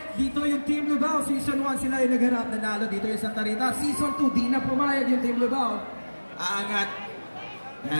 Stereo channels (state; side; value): inverted; both; correlation -1.00